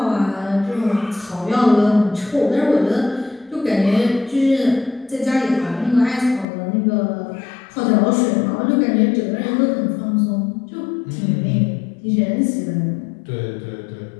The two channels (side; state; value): right; drops out; at 6.5 s